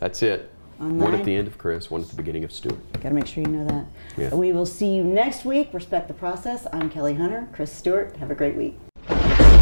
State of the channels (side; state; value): both; inverted; correlation -1.00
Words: That's it. One Online. at the end of Chris, one at the beginning of Stewart. Got to make sure you know that. Yeah. We will see you next week. Respect the Process. I'm Kelly Hunter. Chris Stewart. Have a great week.